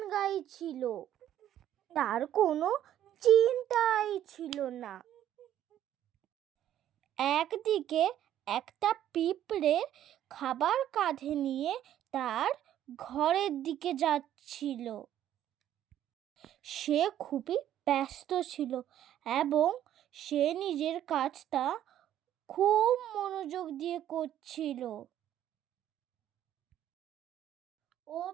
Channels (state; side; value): quieter; left; 11.5 dB